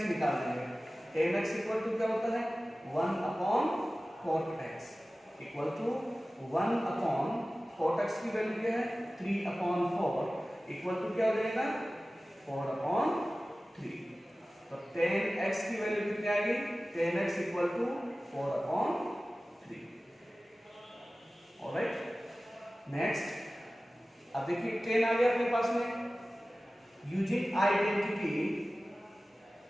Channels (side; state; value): both; normal; correlation 0.96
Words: निकाल देंगे, tan x इक्वल टू क्या होता है 1 upon cot x equal to 1 upon cot x की वैल्यू क्या है 3 अपॉन 4 इक्वल टू क्या हो जाएगा 4 अपॉन 3। तो tan x की वैल्यू कितनी आएगी, tan x equal to 4 upon 3। Alright, next, अब देखिए tan आ गया अपने पास में, using identity